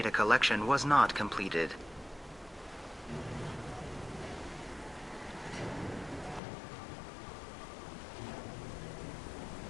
collection was not completed.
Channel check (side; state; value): right; drops out; at 6.4 s